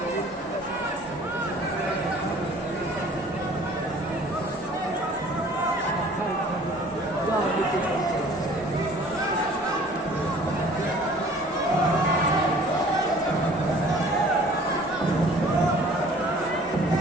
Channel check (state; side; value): normal; both; correlation 0.51